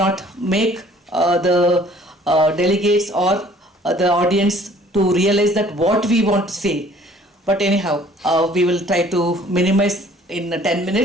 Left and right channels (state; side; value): normal; both; correlation 0.55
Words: make the delegates or the audience to realize that what we want to say. But anyhow, we will try to minimize in 10